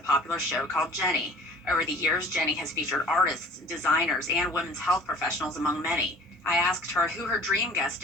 show called Jenny. Over the years, Jenny has featured artists, designers, and women's health professionals, among many. I asked her who her dream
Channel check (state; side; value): normal; both; correlation 0.48